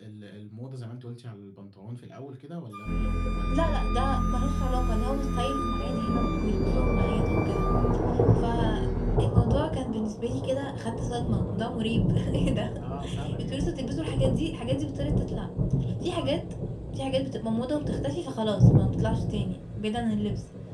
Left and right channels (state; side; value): identical; both; correlation 1.00